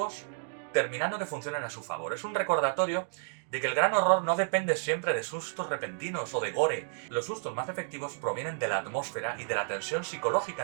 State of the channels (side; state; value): left; silent; digital silence